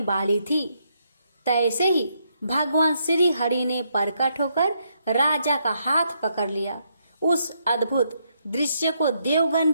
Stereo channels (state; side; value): inverted; both; correlation -0.76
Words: वाली थी, तैसे ही भगवान श्री हरि ने प्रकट होकर राजा का हाथ पकड़ लिया। उस अद्भुत दृश्य को देवगण